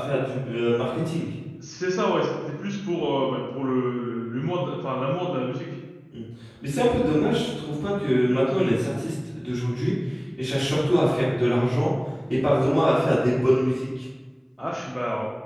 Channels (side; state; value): both; identical; correlation 1.00